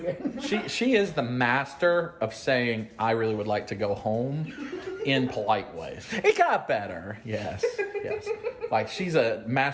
She is the master of saying, I really would like to go home in polite ways. It got better. Yes. Like, she's a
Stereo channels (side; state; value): both; identical; correlation 1.00